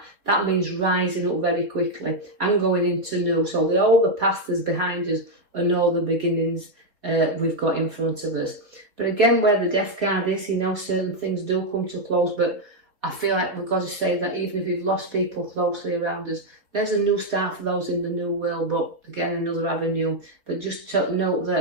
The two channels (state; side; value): late; left; 3.8 ms